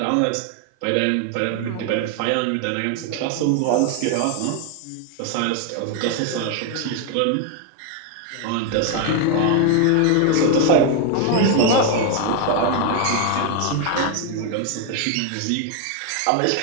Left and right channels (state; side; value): different; both; correlation 0.01